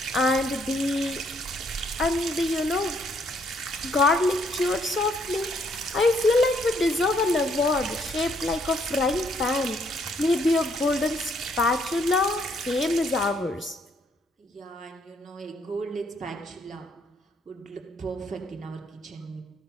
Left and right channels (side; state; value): both; normal; correlation 0.69